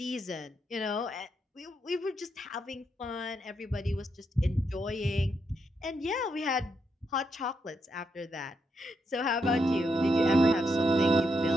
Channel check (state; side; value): normal; both; correlation 0.81